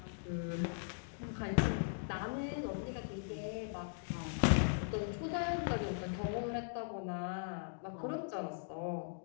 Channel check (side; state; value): right; silent; digital silence